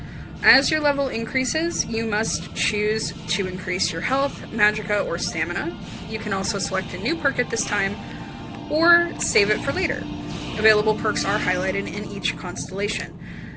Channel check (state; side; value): identical; both; correlation 1.00